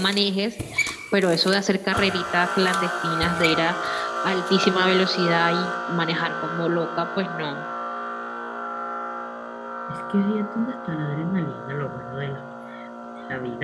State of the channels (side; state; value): both; identical; correlation 1.00